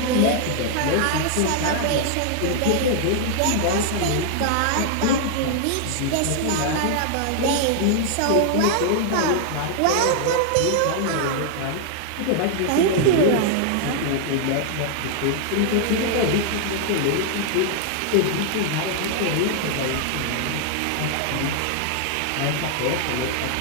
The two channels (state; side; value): different; both; correlation 0.00